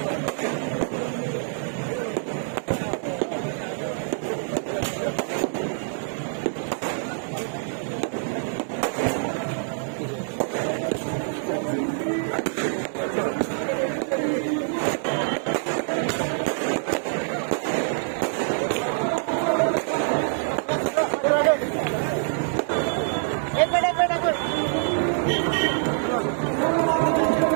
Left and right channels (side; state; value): left; silent; digital silence